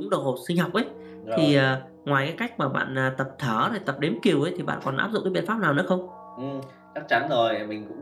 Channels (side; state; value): both; identical; correlation 1.00